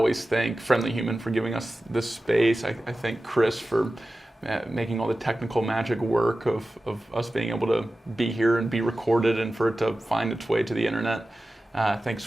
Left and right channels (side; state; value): both; normal; correlation 0.95